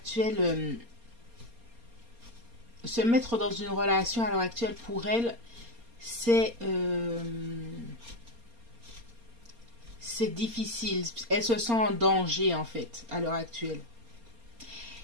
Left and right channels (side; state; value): left; late; 4.3 ms